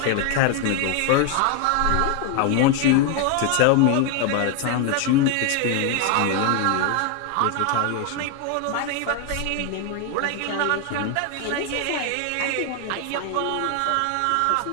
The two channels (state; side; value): different; both; correlation 0.01